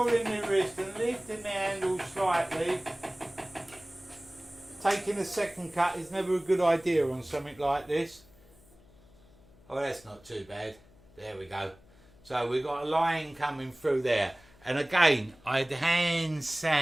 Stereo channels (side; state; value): left; noise; hum, 27 dB below the sound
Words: my wrist and lifting my handle slightly. Taking a second cut is never a good idea on something like this. Oh, that's not too bad. There we go. So we've got a line coming through there. And again, I'd hand